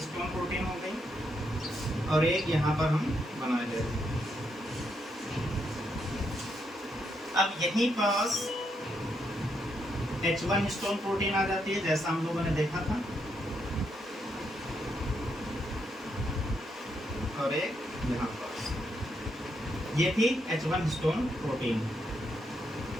प्रोटीन हो गई और एक यहाँ पर हम बना दे रहे हैं। अब यहीं पास H1 हिस्टोन प्रोटीन आ जाती है, जैसा हम लोगों ने देखा था, और एक यहाँ पास ये थी H1 हिस्टोन प्रोटीन।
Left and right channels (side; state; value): both; normal; correlation 0.78